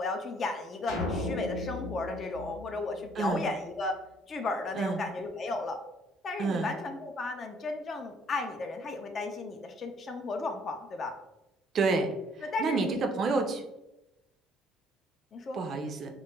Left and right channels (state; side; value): normal; both; correlation 0.62